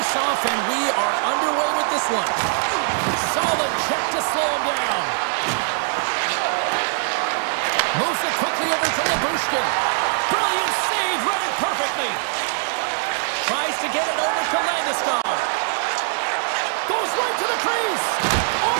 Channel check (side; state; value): left; silent; 61 dB below the other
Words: and we are underway with this one. Solid check to slow him down. Moves it quickly over to Labushkin. Brilliant save, read it perfectly. Tries to get it over to Landeskog. Goes right to the crease.